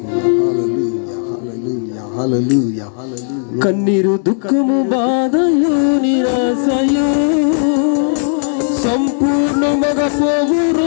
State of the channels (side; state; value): right; silent; digital silence